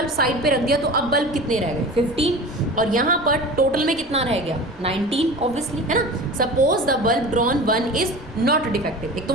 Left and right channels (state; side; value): normal; both; correlation 0.35